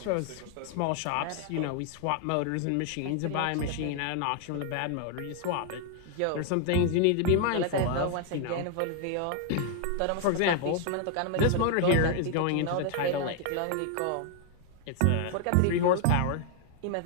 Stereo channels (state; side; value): different; both; correlation 0.00